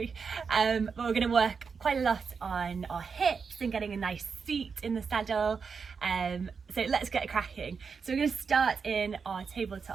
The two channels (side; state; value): left; quieter; 5.6 dB